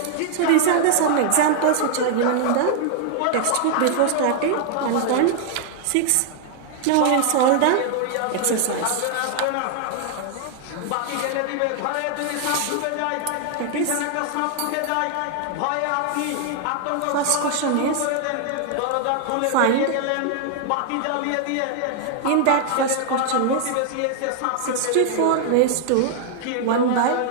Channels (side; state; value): both; different; correlation 0.00